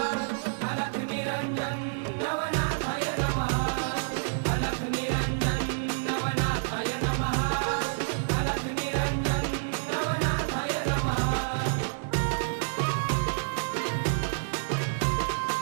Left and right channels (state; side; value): silent; left; 59 dB below the other